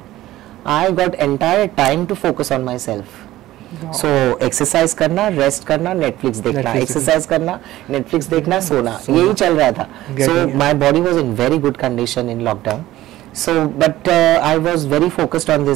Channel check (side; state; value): left; quieter; 15.4 dB